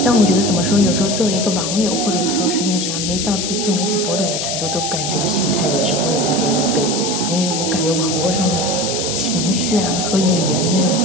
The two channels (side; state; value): left; noise; hiss, 2 dB below the sound